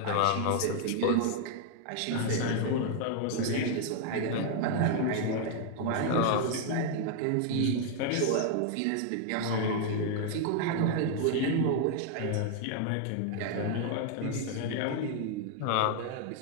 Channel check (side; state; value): both; different; correlation 0.00